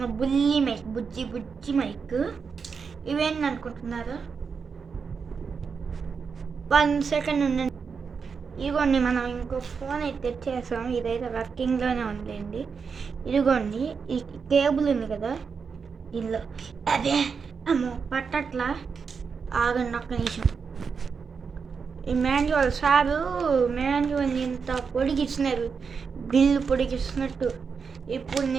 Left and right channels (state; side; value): quieter; left; 5.7 dB